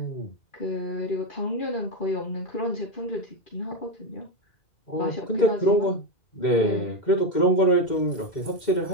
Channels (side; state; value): right; late; 2.1 ms